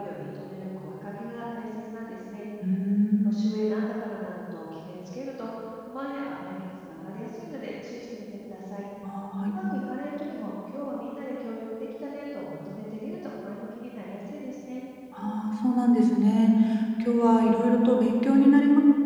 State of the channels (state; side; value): identical; both; correlation 1.00